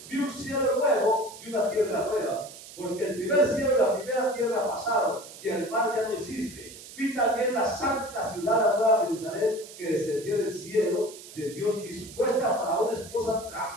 vi un cielo nuevo y una tierra nueva, porque el primer cielo y la primera tierra pasaron, y el mar ya no existe. Vi también la santa ciudad, la nueva Jerusalén, que descendió del cielo de Dios, dispuesta para una esposa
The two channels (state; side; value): noise; right; hiss, 16 dB below the sound